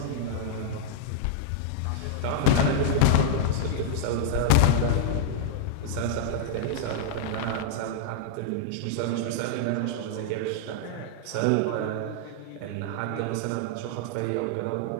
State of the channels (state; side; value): different; both; correlation -0.01